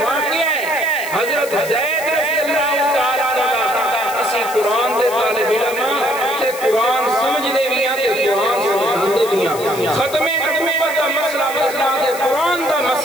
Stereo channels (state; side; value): noise; left; hiss, 13 dB below the sound